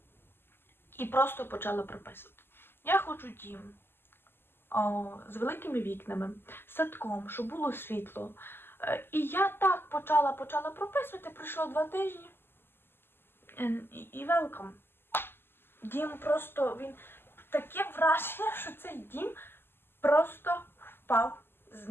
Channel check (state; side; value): late; right; 0.11 ms